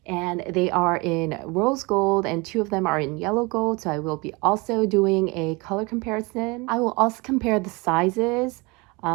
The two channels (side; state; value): left; quieter; 26.4 dB